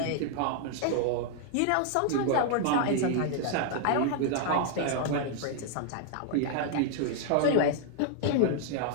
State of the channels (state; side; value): different; both; correlation 0.00